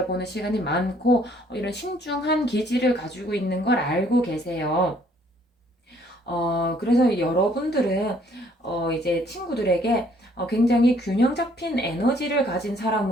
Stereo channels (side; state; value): both; normal; correlation 0.63